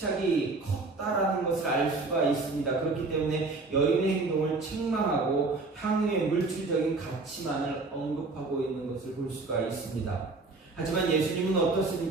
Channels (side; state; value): left; quieter; 3.6 dB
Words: 컸다라는 것을 알 수가 있습니다. 그렇기 때문에 여인의 행동을 책망하고 향유의 물질적인 가치만을 언급하고 있는 것을 볼 수가 있습니다. 하지만 예수님은